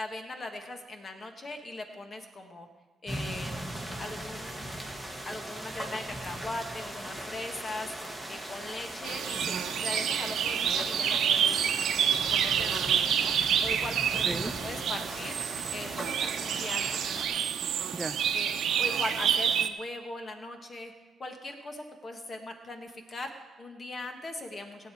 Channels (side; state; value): left; quieter; 5.7 dB